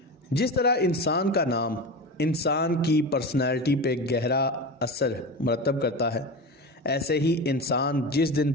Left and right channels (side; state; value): both; normal; correlation 0.25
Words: जिस तरह इंसान का नाम इंसान की पर्सनैलिटी पे गहरा असर मरतब करता है, ऐसे ही इंसान जिस दिन